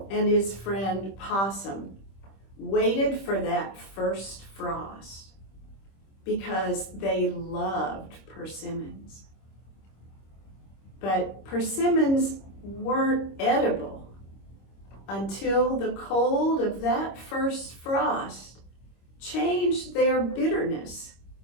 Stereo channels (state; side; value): late; right; 26 ms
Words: and his friend Possum waited for that first frost because they loved persimmons. But persimmons weren't edible until the cold of that first frost changed their bitterness